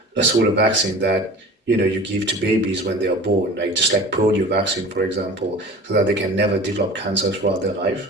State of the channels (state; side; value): normal; both; correlation 0.39